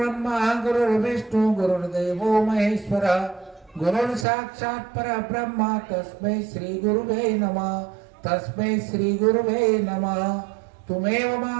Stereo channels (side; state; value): left; drops out; at 4.2 s